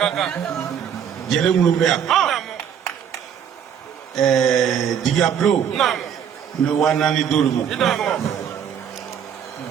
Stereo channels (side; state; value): left; quieter; 8.4 dB